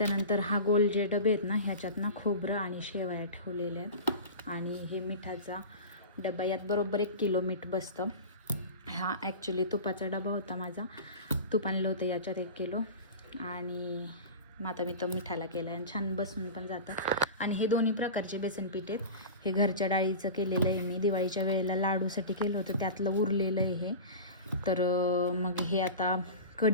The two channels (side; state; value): both; inverted; correlation -0.31